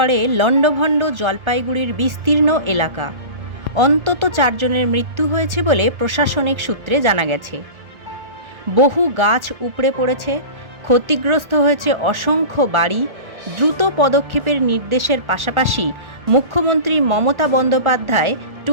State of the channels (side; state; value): left; late; 1.4 ms